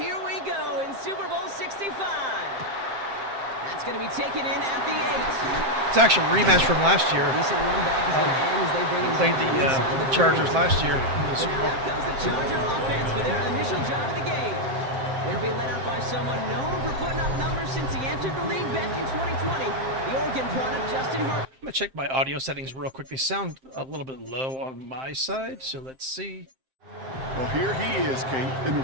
we go in Super Bowl 65. That's going to be taken in at the 8. It's actually a rematch from last year. Decent run back is going to end as they bring him Played the Chargers last year in the Super Bowl. Now out comes the Charger offense for their initial drive of the game. They'll be led out by someone known for putting up numbers since he entered the league back in 2020. The Oregon product, Justin Herbert. I'm going to check my audio settings real quick. They sound a little bit low on my side, so let's see. Well, here he is, Kate, in the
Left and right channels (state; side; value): late; left; 7.6 ms